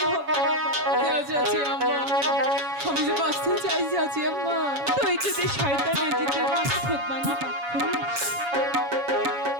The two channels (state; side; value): late; left; 7.0 ms